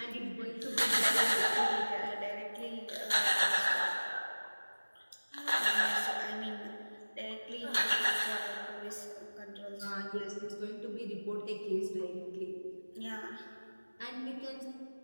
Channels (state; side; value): inverted; both; correlation -1.00